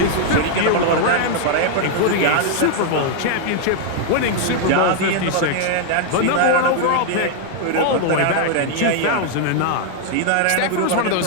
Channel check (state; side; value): different; both; correlation 0.00